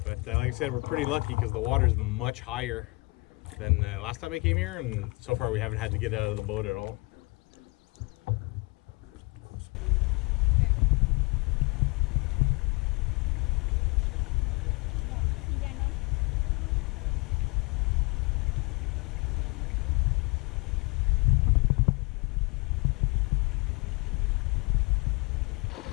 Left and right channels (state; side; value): quieter; right; 27.7 dB